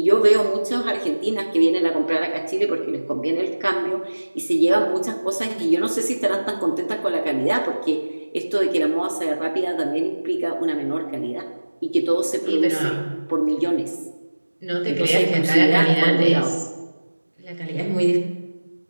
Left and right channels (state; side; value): inverted; both; correlation -1.00